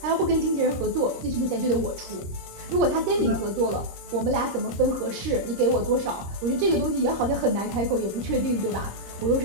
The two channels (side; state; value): left; late; 26 ms